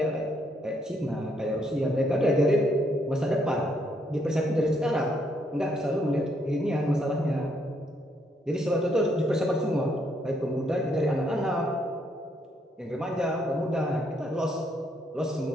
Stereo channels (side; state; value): both; normal; correlation 0.73